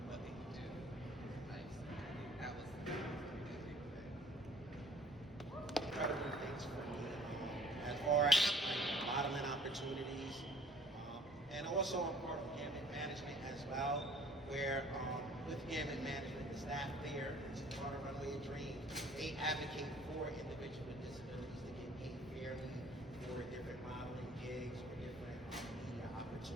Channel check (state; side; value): normal; both; correlation 0.54